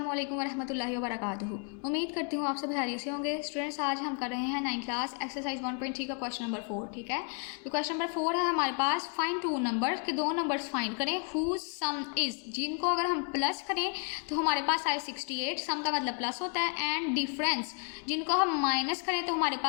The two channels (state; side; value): quieter; right; 39.8 dB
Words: अलैकुम वरहमतुल्लाहि वबरकातुहू। उम्मीद करती हूँ आप सब खैरियत से होंगे। स्टूडेंट्स, आज हम कर रहे हैं 9th क्लास एक्सरसाइज 1.3 का क्वेश्चन नंबर 4। ठीक है, तो क्वेश्चन नंबर 4 है हमारे पास, फाइंड टू नंबर्स के दो नंबर्स फाइंड करें हुज सम इज, जिनको अगर हम प्लस करें तो हमारे पास आए 68, सम का मतलब प्लस होता है, एंड डिफरेंस जिनको हम माइनस करें तो हमारे